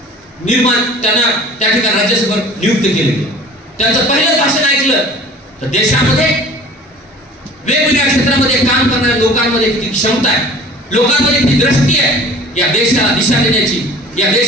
त्यांना त्या ठिकाणी राज्यसभेवर नियुक्त केले. त्यांचं पहिलं भाषण ऐकलं तर देशामध्ये वेगवेगळ्या क्षेत्रामध्ये काम करणाऱ्या लोकांमध्ये किती क्षमता आहे, लोकांमध्ये किती दृष्टी आहे, या देशाला दिशा देण्याची, या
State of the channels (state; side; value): normal; both; correlation 0.45